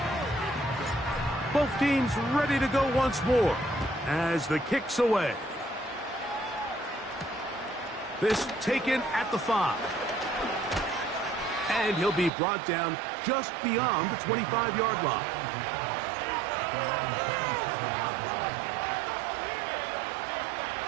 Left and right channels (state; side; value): drops out; left; at 12.3 s